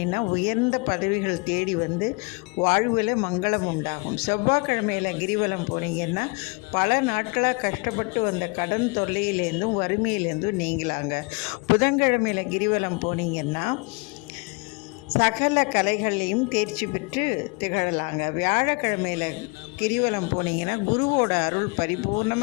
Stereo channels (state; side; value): quieter; right; 30.8 dB